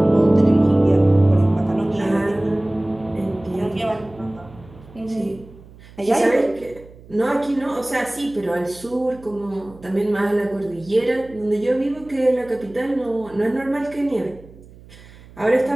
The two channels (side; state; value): right; noise; hum, 22 dB below the sound